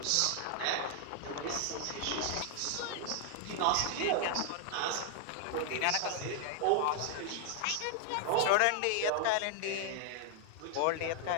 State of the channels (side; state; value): both; different; correlation 0.00